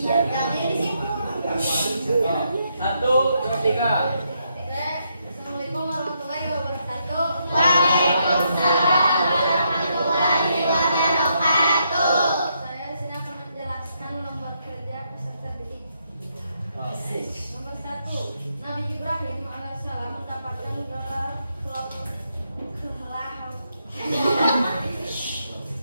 Satu, dua, tiga. Assalamualaikum warahmatullahi wabarakatuh. Waalaikumsalam warahmatullahi wabarakatuh. Saya di sini akan menjelaskan nomor kerja peserta didik. Nomor 1, Nabi Ibrahim alaihissalam mendapatkan gelar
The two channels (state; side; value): inverted; both; correlation -0.78